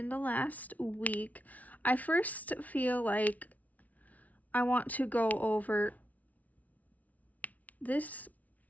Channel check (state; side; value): late; right; 0.072 ms